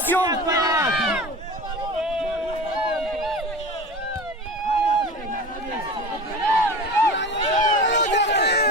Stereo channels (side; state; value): both; normal; correlation 0.32